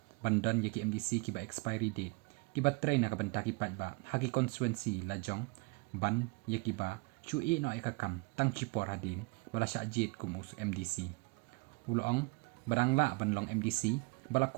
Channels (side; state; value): left; quieter; 27.7 dB